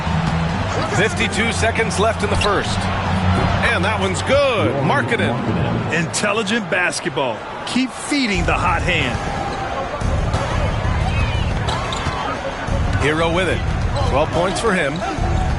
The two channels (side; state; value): both; identical; correlation 1.00